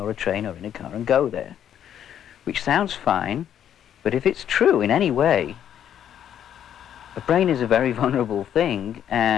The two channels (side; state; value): right; quieter; 9.9 dB